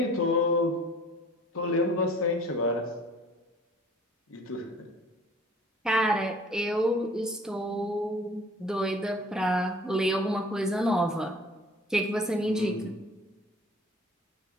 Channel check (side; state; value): both; normal; correlation 0.50